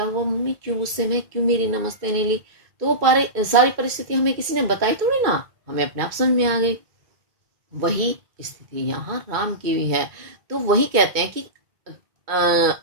हुआ, मम्मी क्यों गुस्से में, क्यों मेरी नमस्ते नहीं ली, तो वो सारी परिस्थिति हमें किसी ने बताई थोड़ी ना, हमें अपने आप समझ में आ गई। वही स्थिति यहाँ राम की भी है। तो वही कहते हैं कि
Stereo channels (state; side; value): late; left; 1.8 ms